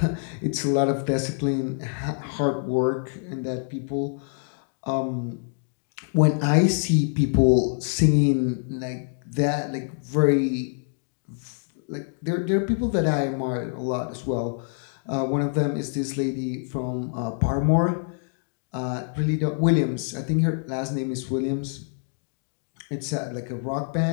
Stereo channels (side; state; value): right; silent; 61 dB below the other